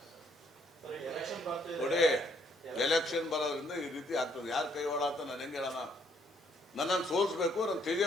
ನೋಡಿ. ಎಲೆಕ್ಷನ್ ಬರೋದ್ರಿಂದ ಈ ರೀತಿ ಆಗ್ತದೆ. ಯಾರು ಕೈವಾಡ ಅಂತ ನಾನು ಹೆಂಗೆ ಹೇಳೋಣ? ನನ್ನನ್ನು ಸೋಲಿಸ್ಬೇಕು, ನಾನು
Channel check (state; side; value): normal; both; correlation 0.68